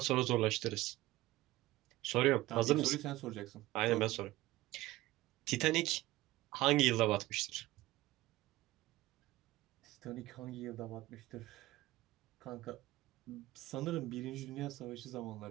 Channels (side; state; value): left; quieter; 17.5 dB